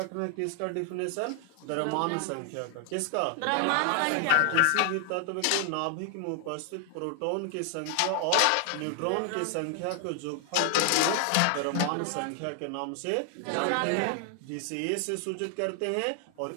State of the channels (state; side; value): different; both; correlation 0.00